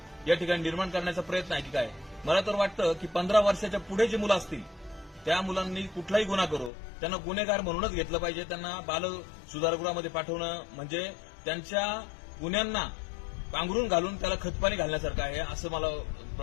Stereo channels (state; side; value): drops out; right; at 6.7 s